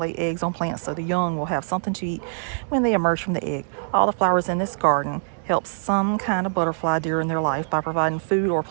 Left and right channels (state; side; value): silent; left; digital silence